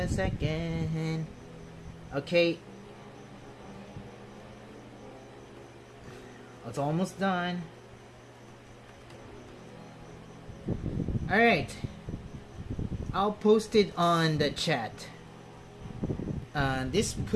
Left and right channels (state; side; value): identical; both; correlation 1.00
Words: second. Okay. It's almost done. Alright. I'll post it on the chat. This